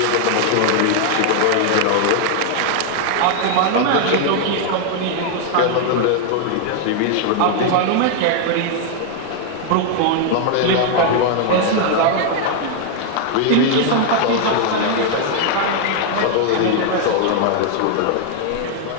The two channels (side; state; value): both; different; correlation 0.00